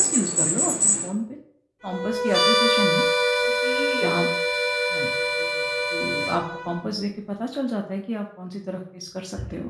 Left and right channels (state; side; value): identical; both; correlation 1.00